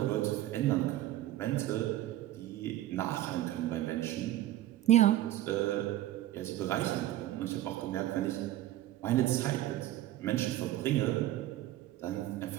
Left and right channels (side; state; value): left; quieter; 14.5 dB